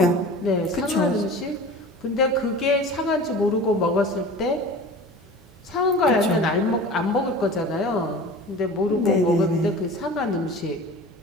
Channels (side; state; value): both; normal; correlation 0.38